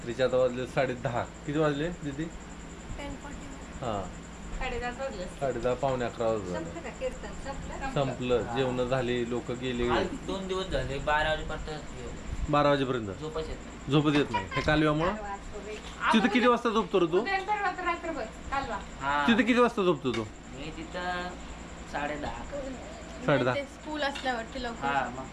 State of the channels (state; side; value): identical; both; correlation 1.00